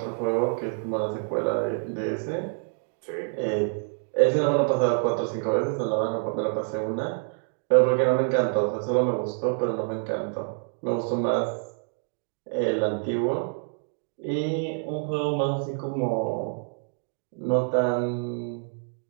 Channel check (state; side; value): silent; left; 60 dB below the other